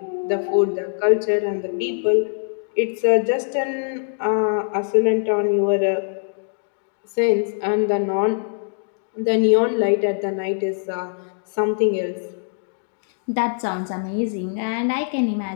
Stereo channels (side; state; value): right; silent; digital silence